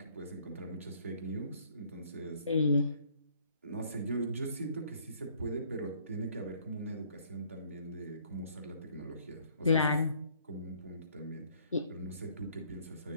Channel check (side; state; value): both; inverted; correlation -0.62